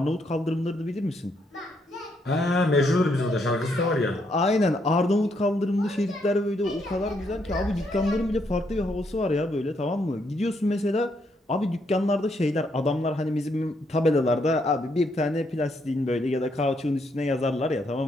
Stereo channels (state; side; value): normal; both; correlation 0.75